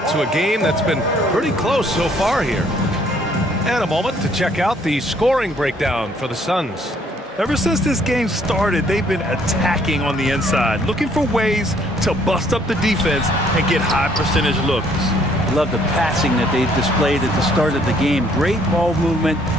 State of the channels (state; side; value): normal; both; correlation 0.64